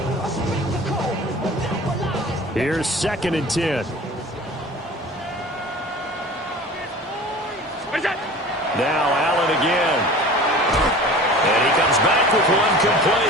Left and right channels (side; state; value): both; normal; correlation 0.40